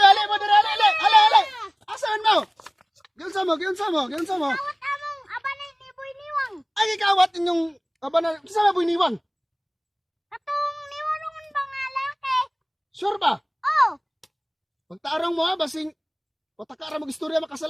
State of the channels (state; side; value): identical; both; correlation 1.00